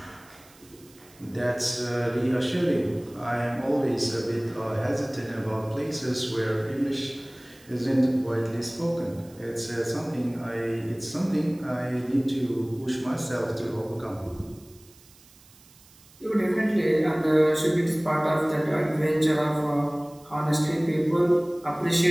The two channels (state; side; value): noise; right; hiss, 26 dB below the sound